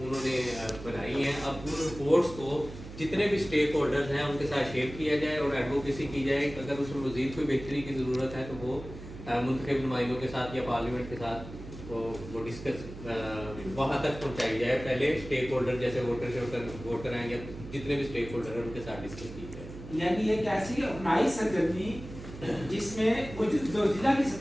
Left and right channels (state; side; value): noise; right; hum, 13 dB below the sound